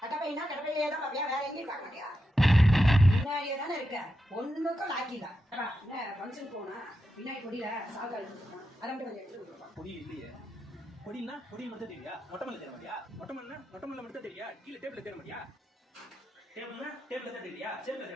கட்டப்பைனா கட்டப்பையிலே தான் பாப்பியா? வேற எங்கேயும் பார்க்க மாட்டியா? பின்னாடியே தானே இருக்க. ஒண்ணுக்கும் லாக்கில. என்ன ஃபங்க்ஷன் போனா பின்னாடி கொடியில சால்கால் போட்டுருக்கான். அதை மட்டும் கொஞ்சம் எடுத்து கொடுப்பா. பொடி இல்லையே. பொடினா பொடி மட்டும் தெரியா? மொட்டமல்ல தேட மாட்டியா? மொட்டமல்னா மொட்டமல்ல மட்டும் தெரியா? கீழ டேபிள்ல தேட மாட்டியா? டேபிள்னா டேபிள்ல தான் தெரியா? சேர்ல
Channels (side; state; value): both; normal; correlation 0.87